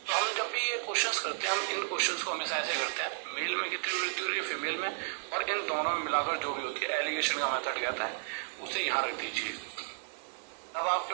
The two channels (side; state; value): left; silent; digital silence